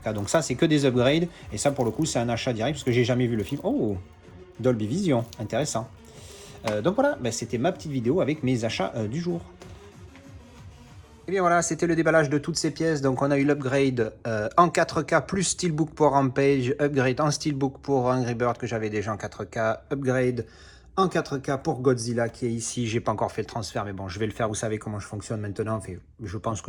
Donc ça c'est que des upgrades et ça pour le coup c'est un achat direct parce que j'ai jamais vu le film. Oh, Dolby Vision, intéressant. Donc voilà, c'était ma petite vidéo avec mes achats du jour. Et bien voilà, c'était le déballage de toutes ces pièces. Donc on a eu l'upgrade en 4K plus Steelbook pour Rampage, upgrade en Steelbook pour Angry Bird que j'avais déjà en 4K, upgrade en 4K pour Godzilla qui est ici. J'ai pas encore fait le transfert, mais bon, je vais le faire. Vous savez comment je fonctionne maintenant. Enfin, je pense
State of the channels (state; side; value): identical; both; correlation 1.00